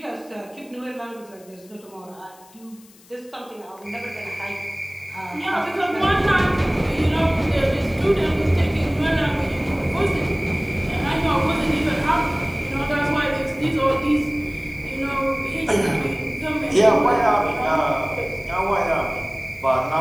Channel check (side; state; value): left; noise; hiss, 26 dB below the sound